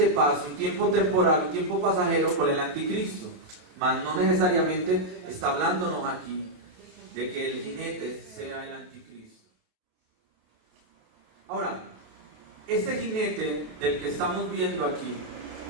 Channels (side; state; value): left; late; 28 ms